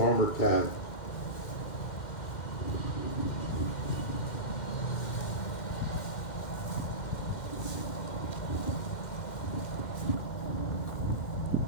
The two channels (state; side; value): late; right; 2.0 ms